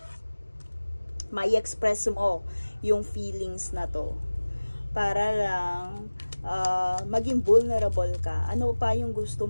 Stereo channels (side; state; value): both; inverted; correlation -1.00